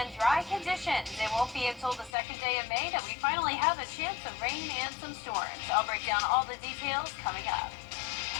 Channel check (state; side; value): drops out; right; at 2.1 s